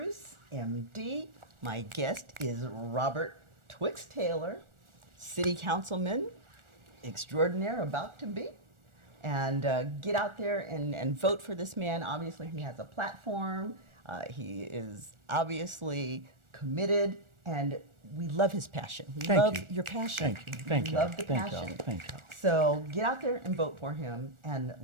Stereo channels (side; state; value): left; late; 1.4 ms